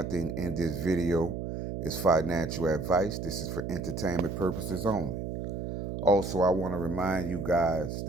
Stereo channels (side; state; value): right; noise; hum, 5 dB below the sound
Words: in this video is financial advice. This is for entertainment purposes only. Also, I want to remind you guys